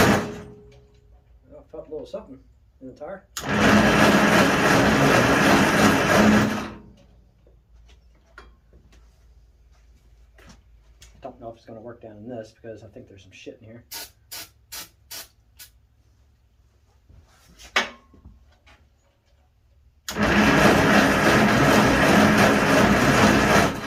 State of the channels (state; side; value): identical; both; correlation 1.00